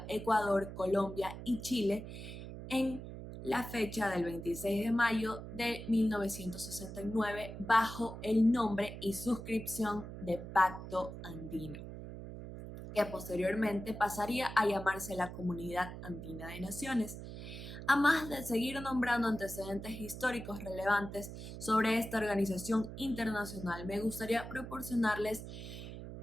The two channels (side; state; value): right; noise; hum, 10 dB below the sound